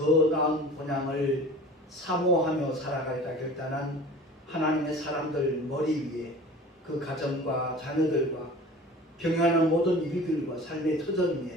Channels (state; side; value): normal; both; correlation 0.41